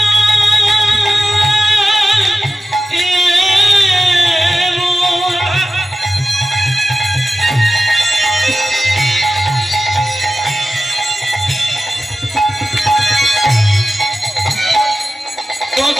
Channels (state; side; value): normal; both; correlation 0.94